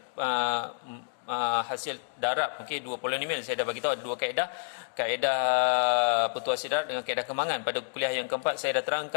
hasil darab dua polinomial. Saya dah bagi tahu ada dua kaedah pertuasi darab dengan kaedah kemangan. Pada kuliah yang keempat saya dah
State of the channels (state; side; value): silent; right; digital silence